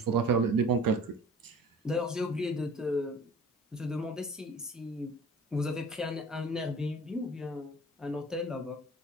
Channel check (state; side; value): normal; both; correlation 0.45